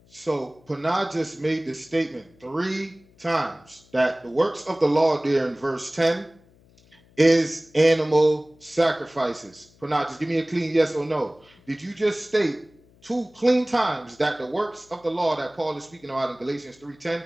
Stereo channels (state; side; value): noise; left; hum, 29 dB below the sound